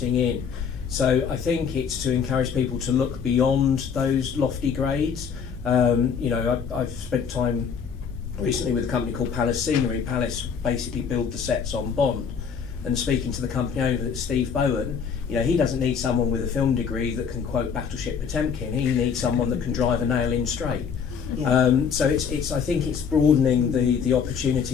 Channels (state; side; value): quieter; right; 6.6 dB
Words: in. So I think it's to encourage people to look beyond those lofty grades. I've spent time recently with a company called Palace Scenery. Palace basically build the sets on Bond. And speaking to the company owner, Steve Bowen, he doesn't need someone with a film degree that can quote Battleship Potemkin. He needs someone that can drive a nail in straight. Yeah. So I think it's broadening the